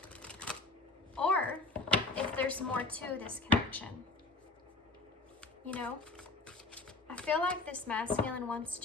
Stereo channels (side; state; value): right; quieter; 3.1 dB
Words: or if there's more to this connection. You know, I feel like this masculine wants